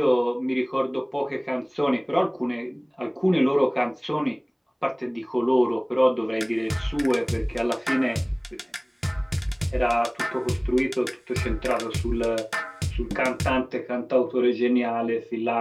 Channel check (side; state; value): both; identical; correlation 1.00